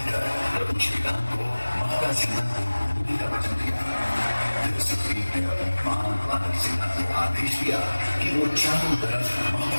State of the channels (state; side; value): inverted; both; correlation -1.00